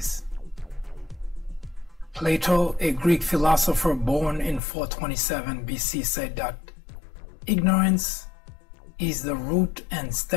Plato, a Greek philosopher born in 427 BC, said that ignorance is the root and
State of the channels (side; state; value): right; drops out; at 4.6 s